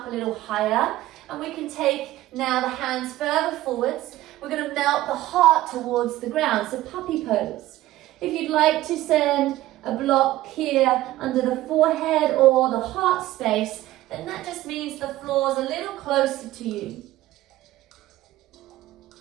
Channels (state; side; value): quieter; left; 15.7 dB